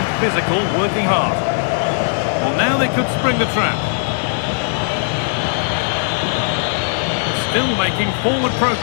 Physical, working hard. Well, now they could spring the trap. Still making forward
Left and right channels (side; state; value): right; silent; 60 dB below the other